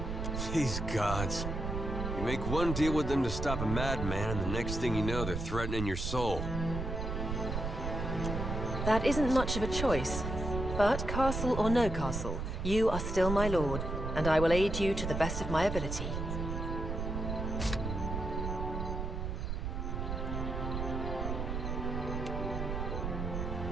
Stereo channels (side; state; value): right; noise; rumble, 3 dB below the sound